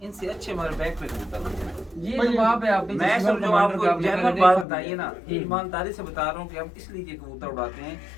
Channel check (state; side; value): drops out; right; at 4.7 s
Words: इनसे अच्छे हमारे बैक पे कबूतर उड़ते हैं। ये तो बाप है आपके मैं शोर सब जो कमांडर आपको का, आपने जनरल पहले बात देखा बताइए भी ना, है। ईमानदारी से बता रहा हूँ कि हम इसलिए ये कबूतर उड़ाते हैं,